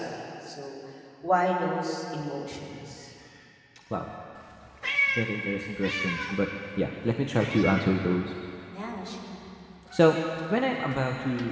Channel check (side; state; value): both; identical; correlation 1.00